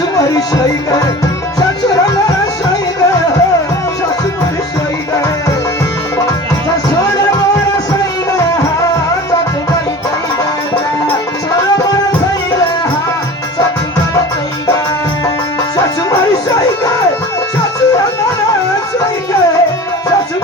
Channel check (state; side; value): normal; both; correlation 0.37